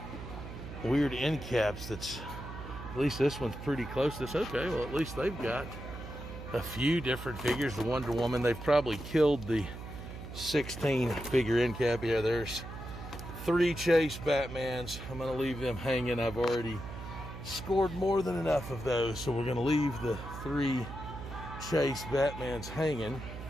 weird end caps. That's, at least this one's pretty close to this. Okay, well, at least they've got a few different figures. The Wonder Woman, they've probably killed the 16 figure end cap. Yeah, there's 3 Chase Batmans. I'm gonna leave them hanging. I've already scored more than enough of those, so we're gonna leave the 3 Chase Batmans hanging.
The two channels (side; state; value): right; noise; hum, 10 dB below the sound